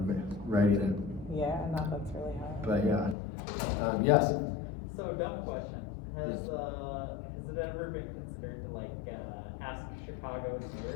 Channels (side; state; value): right; drops out; at 3.2 s